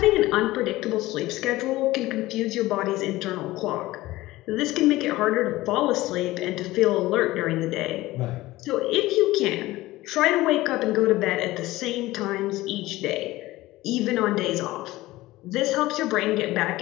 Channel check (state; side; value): quieter; right; 17.9 dB